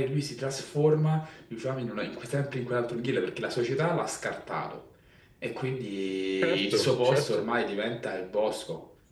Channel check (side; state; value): both; identical; correlation 1.00